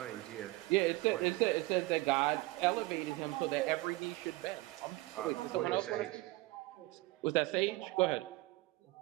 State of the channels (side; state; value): left; quieter; 20.5 dB